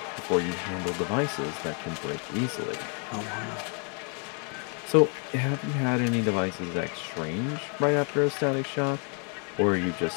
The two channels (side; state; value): right; quieter; 38.9 dB